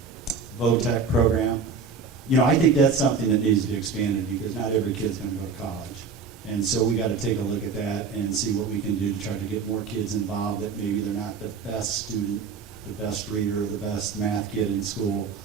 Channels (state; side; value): quieter; left; 5.3 dB